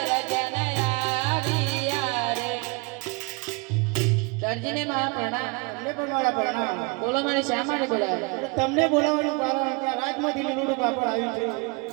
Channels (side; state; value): left; quieter; 28.8 dB